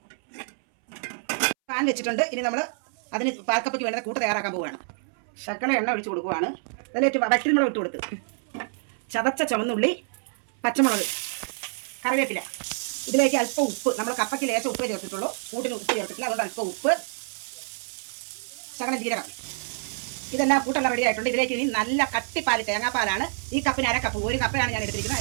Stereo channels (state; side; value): silent; left; 60 dB below the other